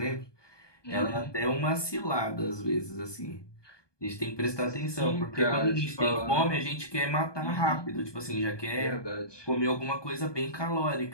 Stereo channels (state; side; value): late; right; 1.2 ms